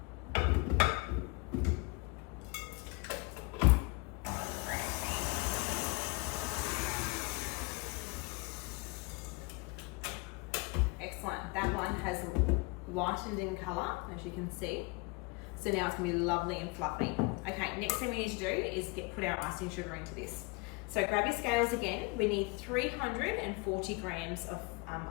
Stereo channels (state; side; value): quieter; right; 27.7 dB